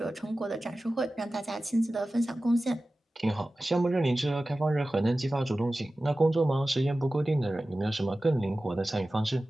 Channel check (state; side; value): normal; both; correlation 0.96